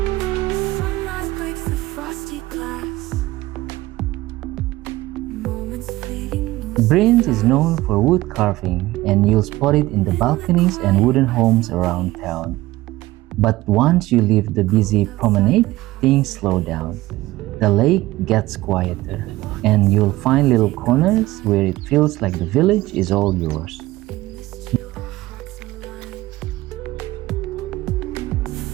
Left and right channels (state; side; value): quieter; left; 17.8 dB